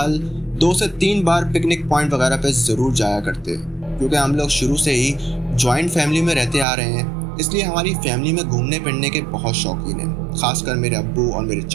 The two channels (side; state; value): left; drops out; at 6.7 s